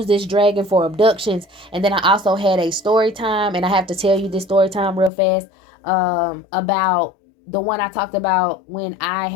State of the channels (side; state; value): right; drops out; at 5.1 s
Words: this dragon for abductions. And then I also had a story time, and I have to tell you this story time real fast, about the one I talked about when I